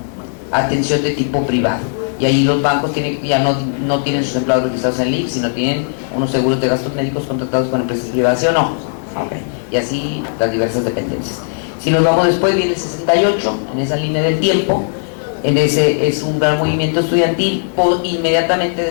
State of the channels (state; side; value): silent; right; 61 dB below the other